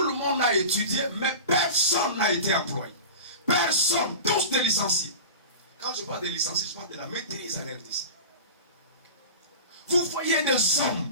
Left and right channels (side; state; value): both; inverted; correlation -0.33